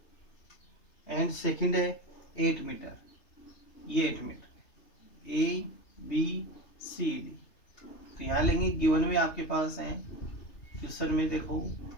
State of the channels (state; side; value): late; right; 3.3 ms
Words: एंड सेकंड है 8 मीटर, ये 8 metre, A B C D. तो यहाँ लेंगे गिवन में आपके पास है क्वेश्चन में देखो